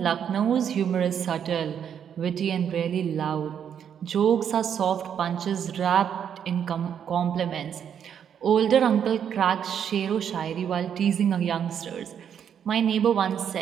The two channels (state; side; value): quieter; left; 8.4 dB